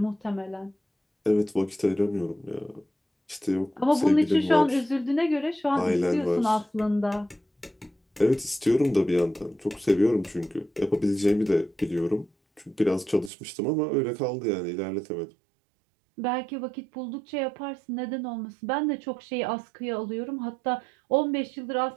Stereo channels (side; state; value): left; drops out; at 13.3 s